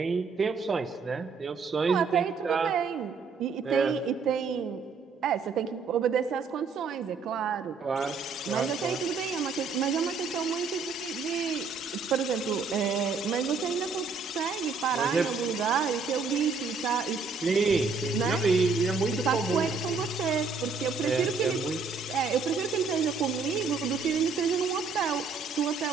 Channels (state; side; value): quieter; left; 4.6 dB